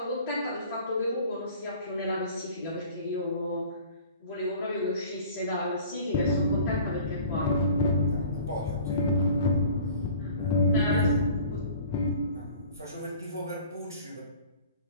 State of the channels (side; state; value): both; inverted; correlation -0.46